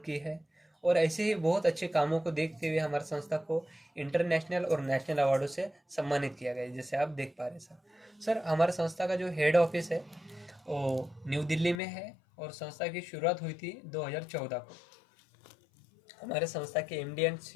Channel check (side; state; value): right; drops out; at 11.8 s